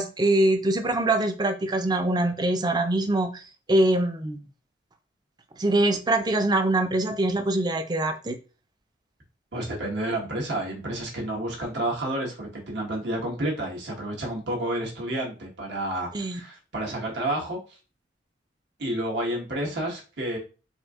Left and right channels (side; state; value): both; normal; correlation 0.57